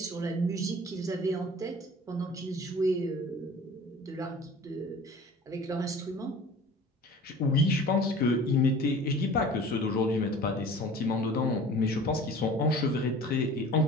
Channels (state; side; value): normal; both; correlation 0.43